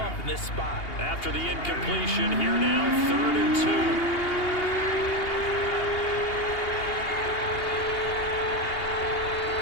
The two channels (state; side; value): late; right; 2.8 ms